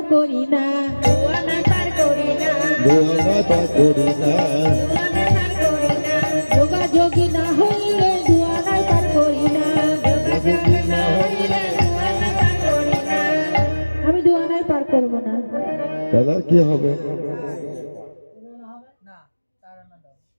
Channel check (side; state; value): both; inverted; correlation -1.00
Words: করি না। দুয়ানা পার করি না, দুয়ানা তা করি না। দুয়ানা পার করি না। যোগাযোগী না হইলে দুয়ানাই পার করি না। যোগাযোগ না হইলে দুয়ানা পার করি না। আমি দুয়ানাই পার করব না। তাহলে আর কি হবে?